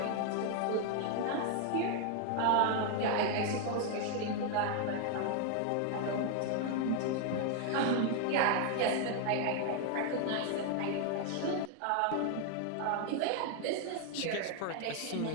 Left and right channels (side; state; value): both; different; correlation 0.00